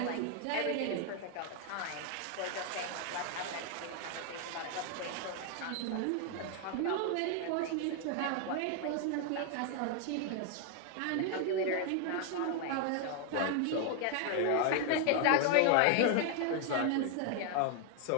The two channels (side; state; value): both; different; correlation 0.00